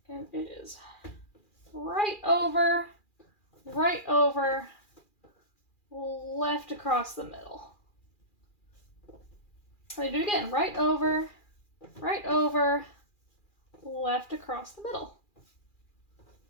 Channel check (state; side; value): late; right; 2.4 ms